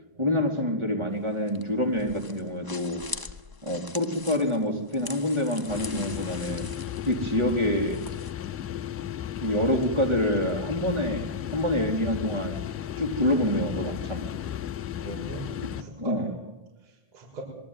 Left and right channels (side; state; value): left; late; 1.0 ms